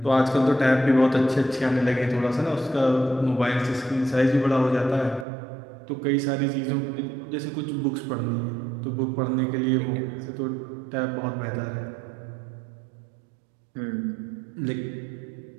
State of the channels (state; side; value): drops out; left; at 5.2 s